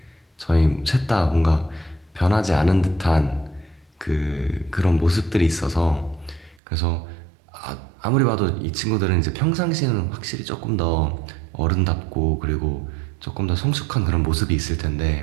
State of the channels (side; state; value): left; drops out; at 6.6 s